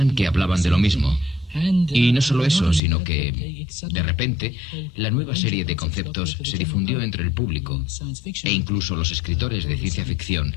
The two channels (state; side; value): drops out; right; at 2.8 s